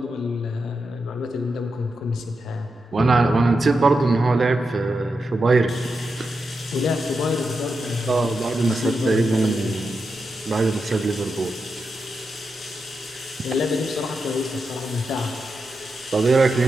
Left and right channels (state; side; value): normal; both; correlation 0.87